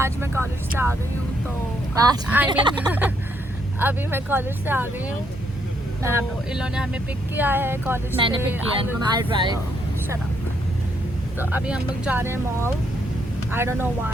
आज मैं कॉलेज से आ गई हूँ तो अभी मैं कॉलेज से आ गई हूँ तो इन्होंने हमें पिक किया है कॉलेज से. मैंने पिक किया इनको. I drive. Shut up. तो अभी हम लोग जा रहे हैं mall. I don't know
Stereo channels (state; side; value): normal; both; correlation 0.74